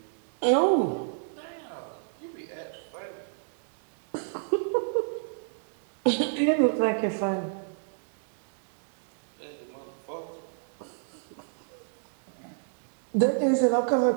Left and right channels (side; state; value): left; silent; digital silence